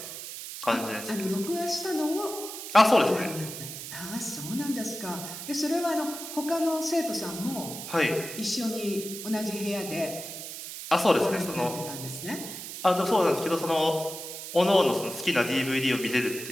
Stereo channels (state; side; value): noise; right; hiss, 9 dB below the sound